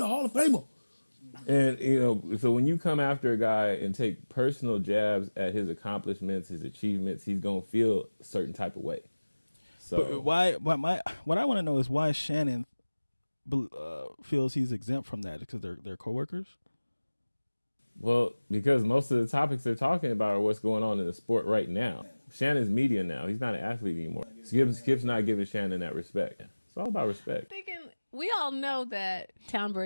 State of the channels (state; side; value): inverted; both; correlation -1.00